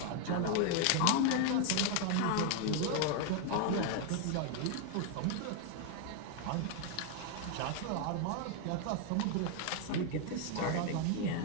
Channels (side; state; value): both; different; correlation 0.00